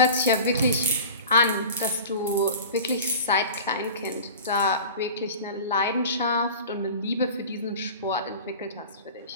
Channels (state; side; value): inverted; both; correlation -0.37